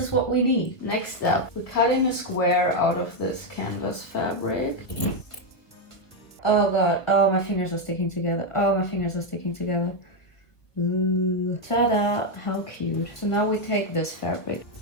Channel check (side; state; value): right; late; 1.7 ms